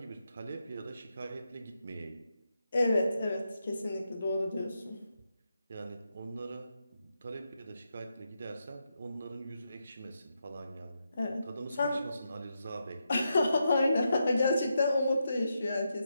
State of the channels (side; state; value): both; inverted; correlation -0.85